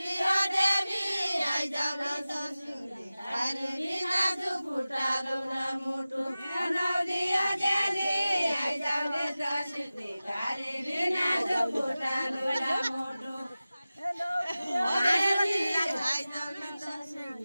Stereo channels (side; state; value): both; inverted; correlation -0.96